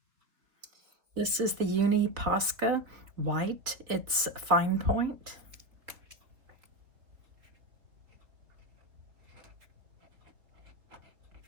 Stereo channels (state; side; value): late; left; 3.6 ms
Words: this is the Uni Posca white. It's fine point.